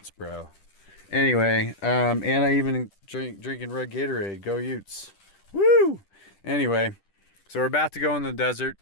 bro. Anyway, and I even drinking red Gatorade. Go Utes. Woo! Anyway, so we're about to go in the desert.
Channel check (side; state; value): right; late; 10 ms